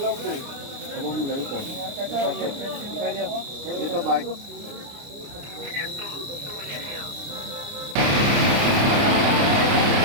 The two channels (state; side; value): late; left; 29 ms